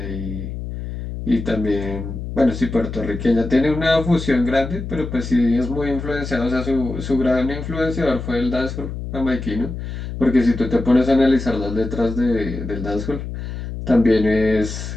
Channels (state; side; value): noise; left; hum, 7 dB below the sound